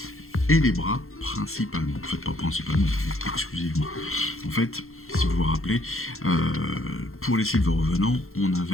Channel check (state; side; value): late; right; 0.62 ms